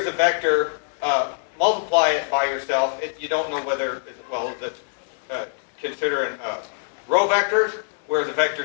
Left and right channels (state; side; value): silent; right; 63 dB below the other